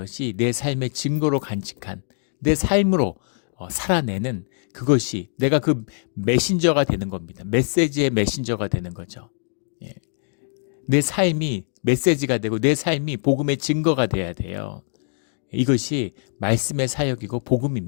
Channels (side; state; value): right; silent; digital silence